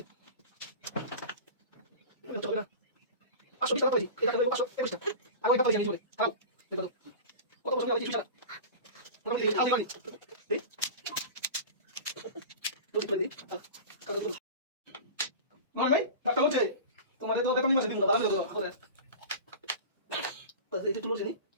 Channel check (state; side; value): inverted; both; correlation -0.32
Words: চলবে না। 520 টাকা পাইছি। এই টাকা দেবো 521 টাকা। আমি একটা পাইছি আমি চলে। খাও। দেখো তো। কত বছর আগে কিছু মোটামুটি আদি বাড়ি। এই দুটো করে দিই। নয় ভাই, ডাক্তার বলছে তোমাদের তো বেতন মাসে দিন না, দাঁড়ান কত করে। তো এই যে তুলো ছিল,